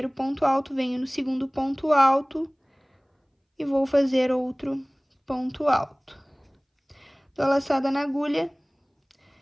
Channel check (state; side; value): identical; both; correlation 1.00